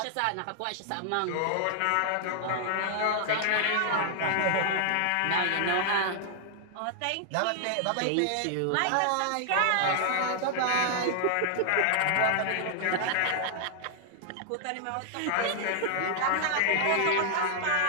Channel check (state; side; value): different; both; correlation 0.00